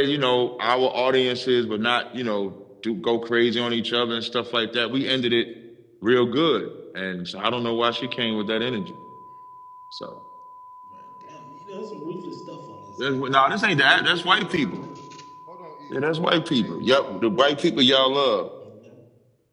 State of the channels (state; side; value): identical; both; correlation 1.00